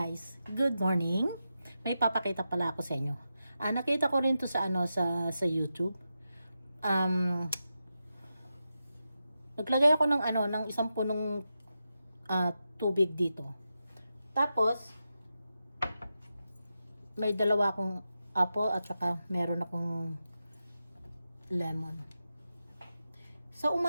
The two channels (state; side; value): inverted; both; correlation -0.89